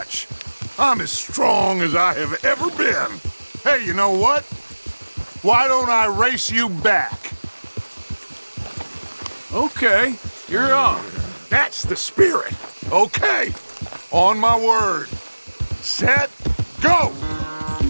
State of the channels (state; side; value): inverted; both; correlation -1.00